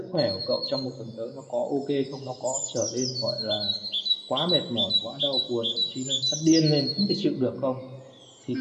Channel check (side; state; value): both; identical; correlation 1.00